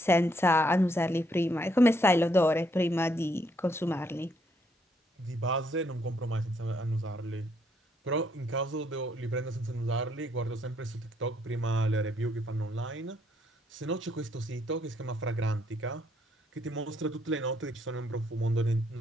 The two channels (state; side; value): normal; both; correlation 0.72